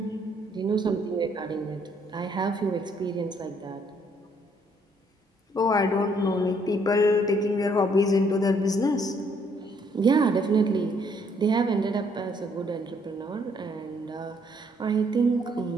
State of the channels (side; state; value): both; normal; correlation 0.67